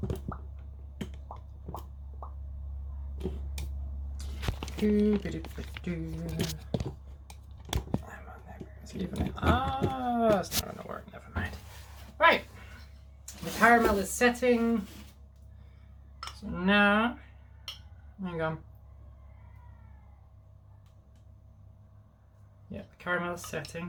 Ah, it's not gonna work. Never mind. Right, the caramel is setting. So now, hang on. Yeah, the caramel is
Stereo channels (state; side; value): identical; both; correlation 1.00